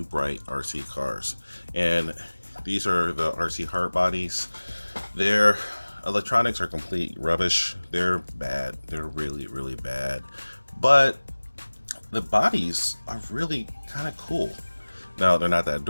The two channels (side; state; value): both; inverted; correlation -1.00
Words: Spright RC cars, and these are the RC hard bodies. Their electronics are complete rubbish. They're bad. They're really bad. But the bodies are really kind of cool. Now, they're not that